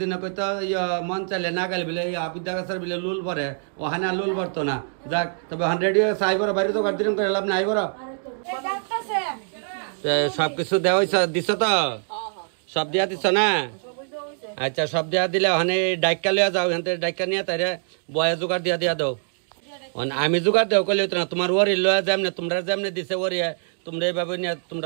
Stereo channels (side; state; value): left; silent; 63 dB below the other